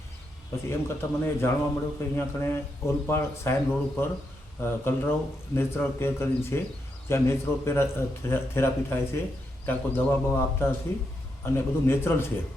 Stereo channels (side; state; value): both; normal; correlation 0.82